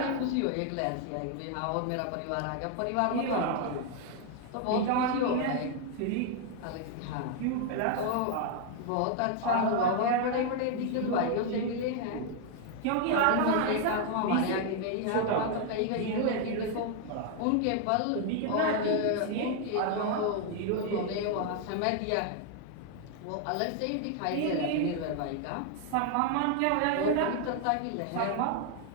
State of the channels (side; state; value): both; different; correlation 0.00